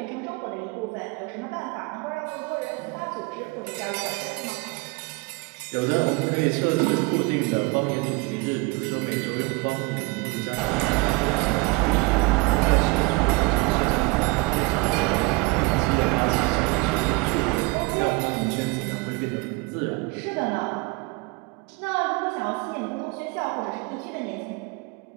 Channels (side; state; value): left; quieter; 25.4 dB